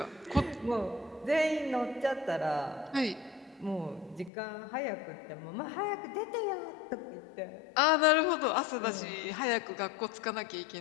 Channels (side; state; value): right; drops out; at 4.3 s